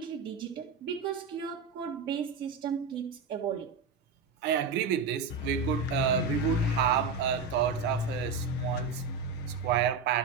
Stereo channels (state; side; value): quieter; left; 4.9 dB